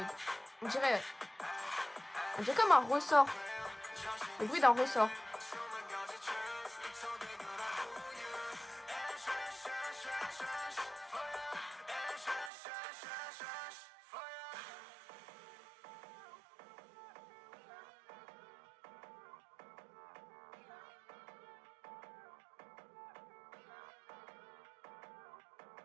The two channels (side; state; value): left; drops out; at 12.5 s